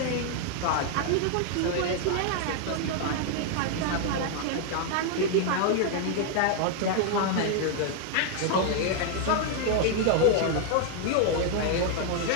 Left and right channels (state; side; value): different; both; correlation 0.00